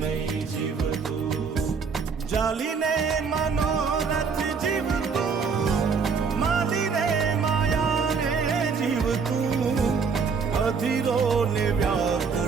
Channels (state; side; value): quieter; left; 5.5 dB